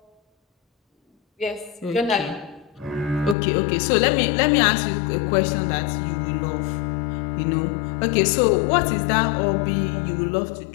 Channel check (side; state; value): right; drops out; at 3.4 s